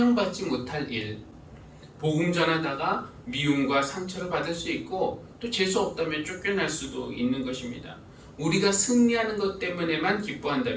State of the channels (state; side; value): identical; both; correlation 1.00